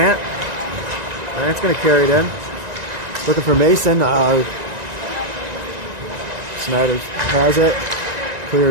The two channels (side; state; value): left; late; 1.9 ms